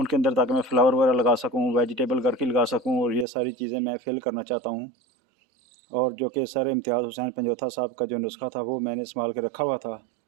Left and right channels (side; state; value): left; drops out; at 3.2 s